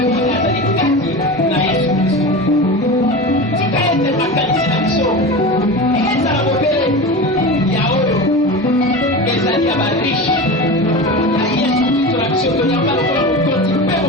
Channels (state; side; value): normal; both; correlation 0.28